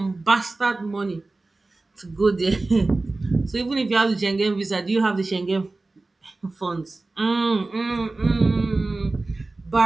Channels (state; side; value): quieter; left; 3.3 dB